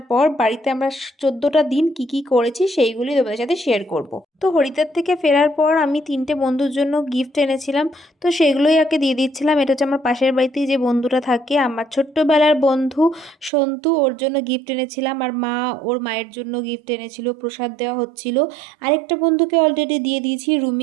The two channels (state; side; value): drops out; left; at 13.5 s